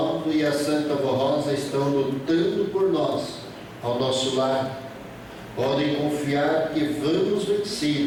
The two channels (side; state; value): both; identical; correlation 1.00